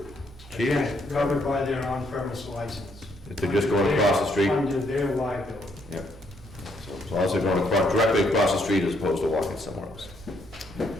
Chief? Covered by their on-premise license. If they're just going across the street? Under their liability. Yep. So as long as they're going directly across the street as opposed to walking somewhere else.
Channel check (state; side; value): normal; both; correlation 0.71